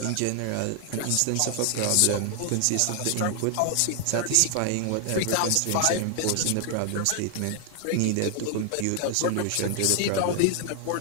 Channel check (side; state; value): both; different; correlation 0.00